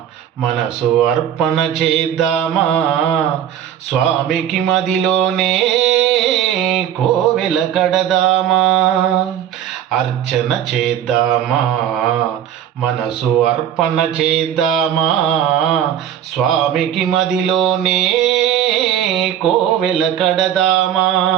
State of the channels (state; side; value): quieter; left; 10.2 dB